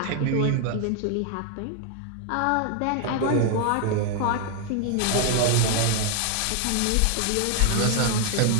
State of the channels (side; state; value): both; different; correlation 0.00